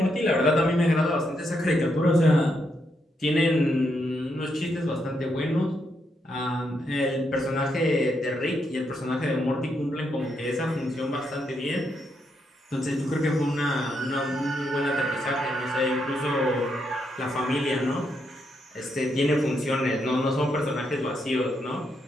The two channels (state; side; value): normal; both; correlation 0.79